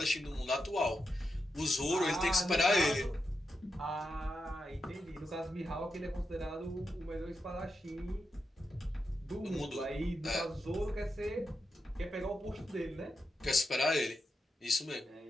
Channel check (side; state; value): both; normal; correlation 0.87